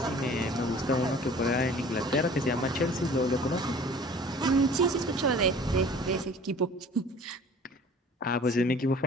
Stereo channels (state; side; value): normal; both; correlation 0.48